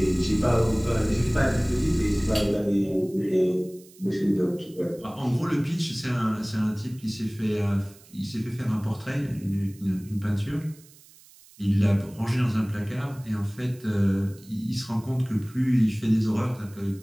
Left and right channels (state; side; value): noise; right; hiss, 24 dB below the sound